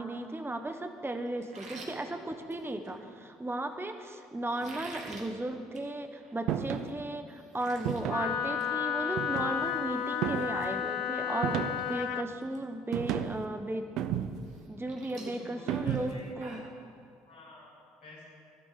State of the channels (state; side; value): normal; both; correlation 0.57